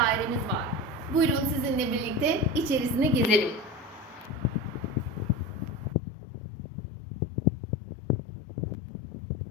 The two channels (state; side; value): drops out; right; at 6.0 s